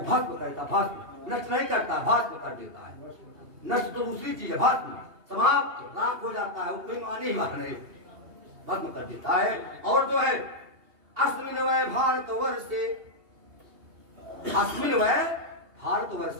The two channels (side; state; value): left; late; 2.7 ms